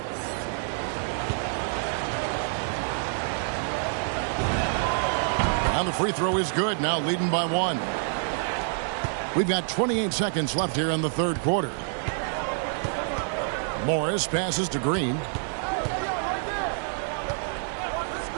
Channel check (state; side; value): silent; left; 60 dB below the other